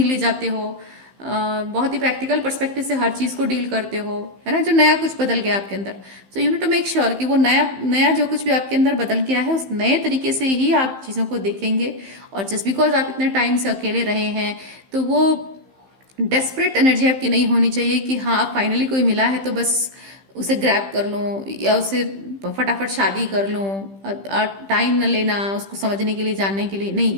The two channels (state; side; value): late; left; 15 ms